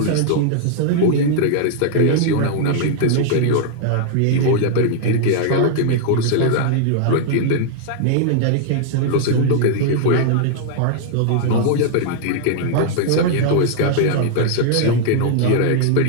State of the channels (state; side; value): different; both; correlation -0.01